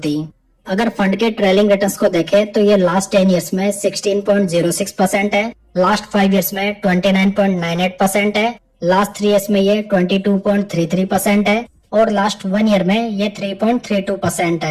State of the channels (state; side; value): identical; both; correlation 1.00